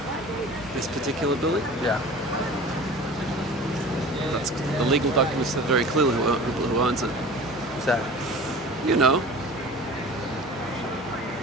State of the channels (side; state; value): both; normal; correlation 0.40